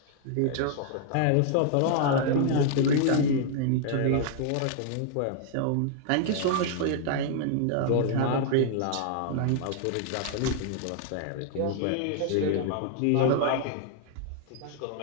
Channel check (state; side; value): different; both; correlation 0.00